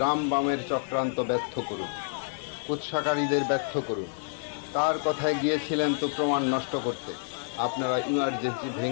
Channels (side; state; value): right; silent; digital silence